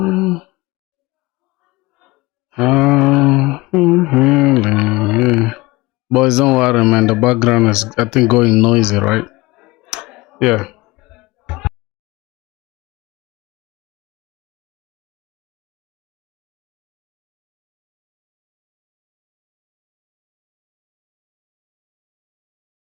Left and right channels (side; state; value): right; quieter; 21.7 dB